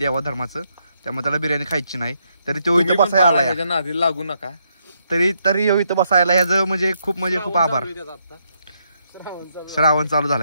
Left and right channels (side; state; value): both; inverted; correlation -0.77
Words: धर्माचं, त्यामुळे त्याला बिर्याणी खायची नाही. तरी तो इथं बसायला आला. नादी लागू नका. तरी इथं बसायला ह्याचं म्हणजे खूप आभार. श्रावण चालू